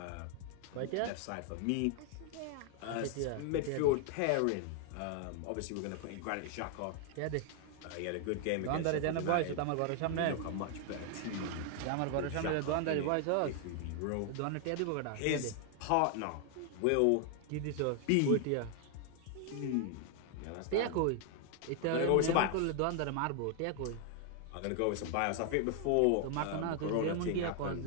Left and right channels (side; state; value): both; different; correlation 0.00